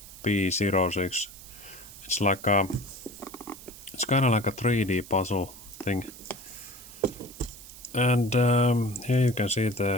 It's like it's kind of like a 3D puzzle thing. And here you can see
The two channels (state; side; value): noise; right; hiss, 17 dB below the sound